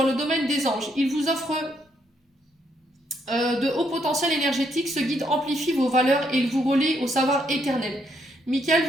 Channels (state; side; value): normal; both; correlation 0.74